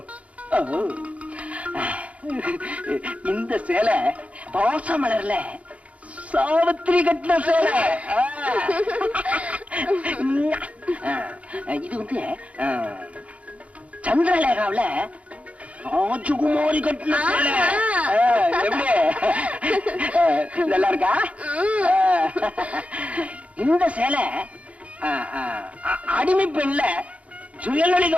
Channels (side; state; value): left; late; 0.065 ms